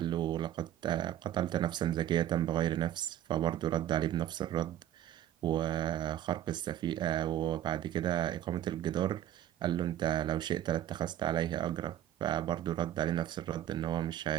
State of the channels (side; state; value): left; quieter; 11.8 dB